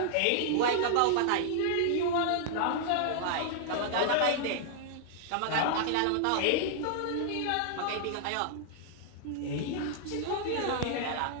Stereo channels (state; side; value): different; both; correlation -0.01